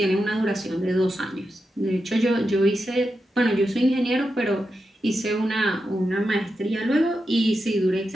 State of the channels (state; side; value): normal; both; correlation 0.88